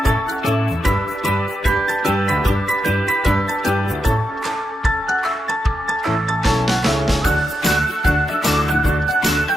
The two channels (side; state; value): both; normal; correlation 0.86